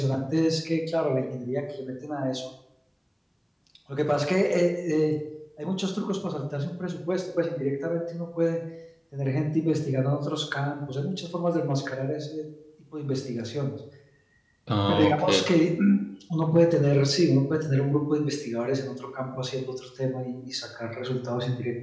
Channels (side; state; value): both; identical; correlation 1.00